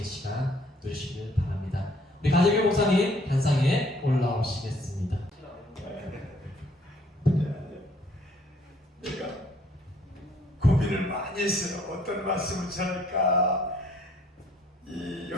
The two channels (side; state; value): both; normal; correlation 0.62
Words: 시간 누리시길 바랍니다. 우리 가재규 목사님 단상에 올라오시겠습니다. 내가 고민을 많이 했어요. 어떤 말씀을 전할까.